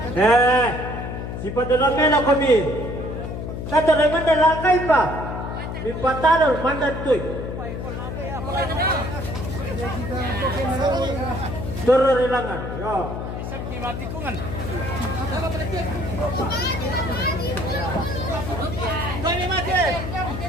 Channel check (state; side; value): noise; left; hum, 6 dB below the sound